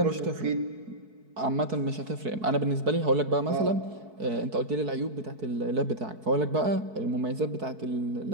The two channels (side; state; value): left; late; 4.6 ms